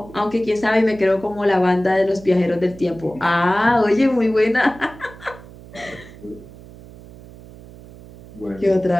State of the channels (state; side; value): noise; right; hum, 19 dB below the sound